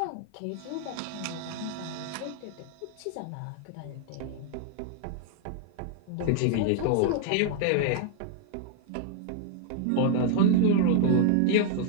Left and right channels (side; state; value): both; different; correlation 0.00